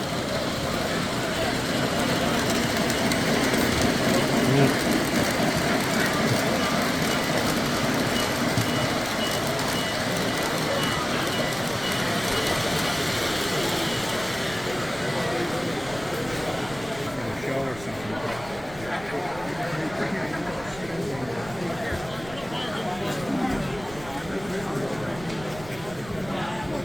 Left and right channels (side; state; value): right; noise; rumble, 18 dB below the sound